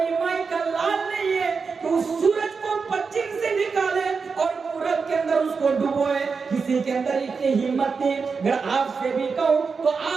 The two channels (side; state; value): left; quieter; 5.1 dB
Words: مائی کا لال نہیں ہے تو اس سورج کو پچھم سے نکالے اور پورب کے اندر اس کو ڈبوئے. کسی کے اندر اتنی ہمت نہیں. اگر آپ سے بھی کہوں تو